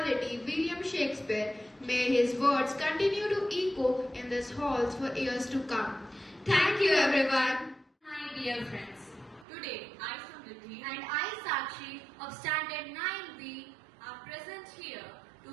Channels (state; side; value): drops out; left; at 9.5 s